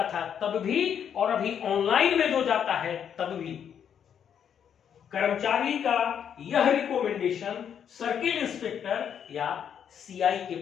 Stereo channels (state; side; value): quieter; right; 8.4 dB